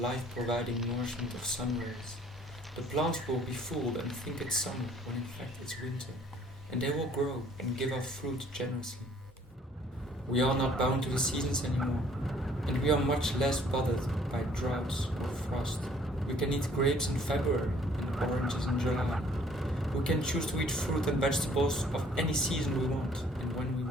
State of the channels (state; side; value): normal; both; correlation 0.59